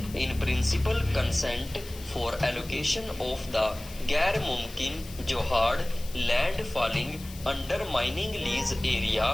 In principle, consent for allocation of the गैर मुमकिन जोहाड़ land falling under mining lease area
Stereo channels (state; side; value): noise; left; hiss, 17 dB below the sound